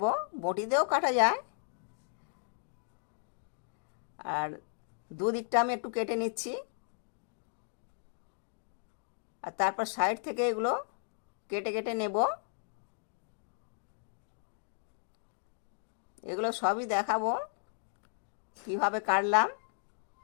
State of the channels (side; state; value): right; silent; digital silence